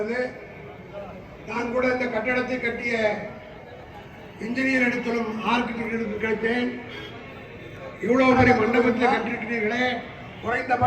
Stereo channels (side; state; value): both; identical; correlation 1.00